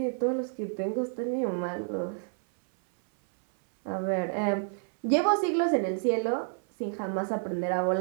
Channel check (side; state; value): left; silent; 58 dB below the other